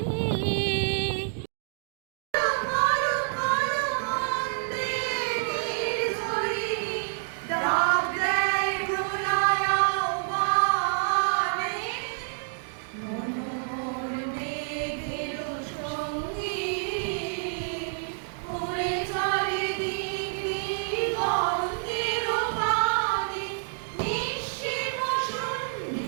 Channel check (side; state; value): left; silent; digital silence